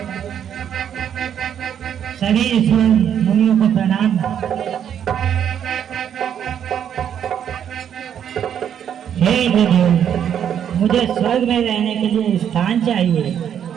सभी ऋषि मुनियों को प्रणाम। हे इंद्रदेव, मुझे स्वर्ग में रहने के लिए स्थान चाहिए।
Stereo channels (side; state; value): left; quieter; 9.0 dB